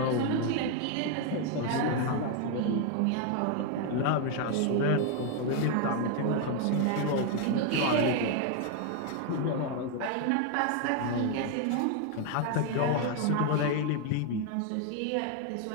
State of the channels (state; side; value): different; both; correlation 0.01